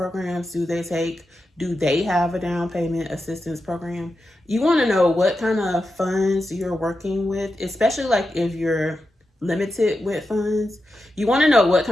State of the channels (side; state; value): both; normal; correlation 0.89